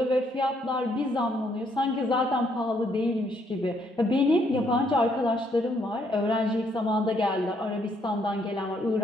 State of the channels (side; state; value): both; normal; correlation 0.71